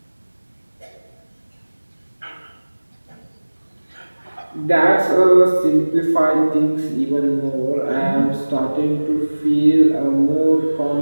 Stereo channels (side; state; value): both; inverted; correlation -1.00